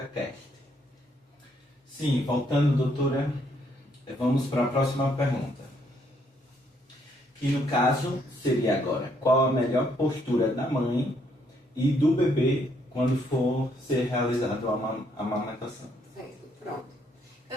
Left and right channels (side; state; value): both; normal; correlation 0.71